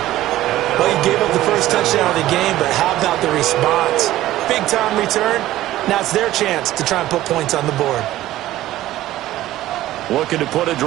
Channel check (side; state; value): left; quieter; 14.9 dB